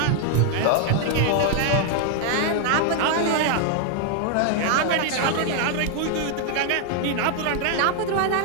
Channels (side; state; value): both; different; correlation 0.00